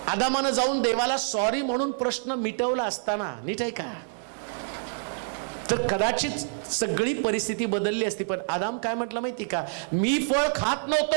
आदामानं जाऊन देवाला सॉरी म्हणून प्रश्न मिटवला असताना, नीट आहे का, तर कदाचित सगळी परिस्थिती बदलली असती. पण आदाम काय म्हटलं माहिती का, मी फळ खात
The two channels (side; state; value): left; silent; digital silence